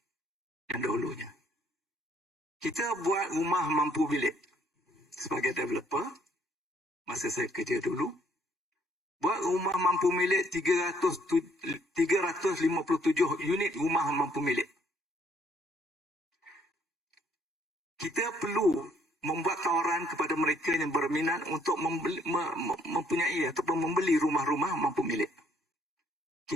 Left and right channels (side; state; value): both; normal; correlation 0.66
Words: yang dahulunya. Kita buat rumah mampu bilik sebagai developer masa saya kerja dulu. Buat rumah mampu milik 357 unit rumah mampu milik. Kita perlu membuat tawaran kepada mereka yang berminat untuk mempunyai ataupun membeli rumah-rumah mampu milik.